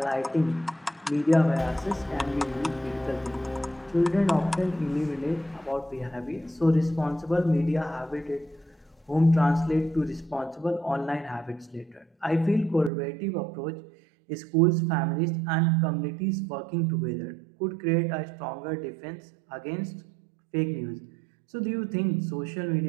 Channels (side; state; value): left; drops out; at 12.9 s